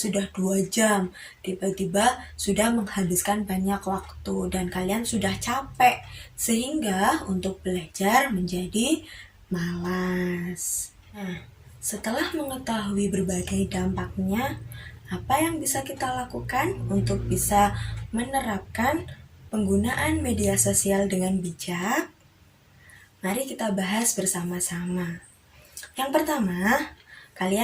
2 jam, tiba-tiba sudah menghabiskan banyak waktu dan kalian sudah capek, sehingga untuk belajar menjadi malas. Nah, setelah mengetahui berbagai dampaknya, apa yang bisa kita lakukan untuk bisa menerapkan penggunaan media sosial dengan bijak? Mari kita bahas bersama-sama. Yang pertama,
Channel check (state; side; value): identical; both; correlation 1.00